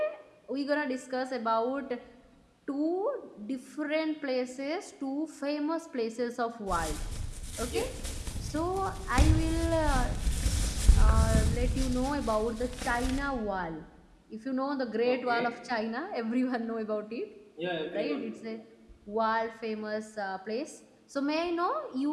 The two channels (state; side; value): identical; both; correlation 1.00